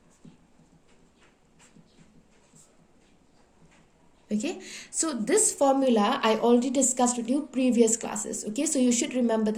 Okay, so this formula I already discussed with you previous classes. Okay, so you should remember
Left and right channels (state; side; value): identical; both; correlation 1.00